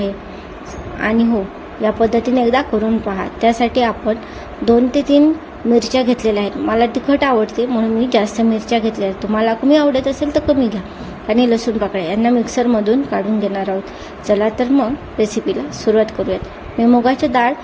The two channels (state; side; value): identical; both; correlation 1.00